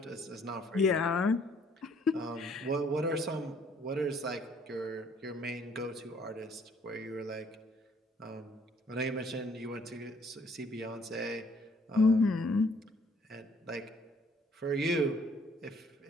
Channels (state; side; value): normal; both; correlation 0.62